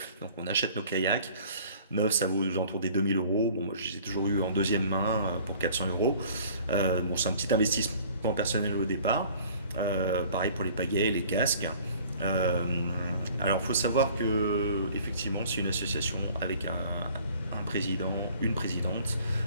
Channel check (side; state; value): both; inverted; correlation -0.51